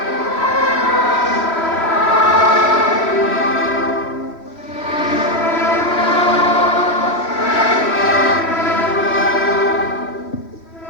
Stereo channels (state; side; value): late; right; 3.0 ms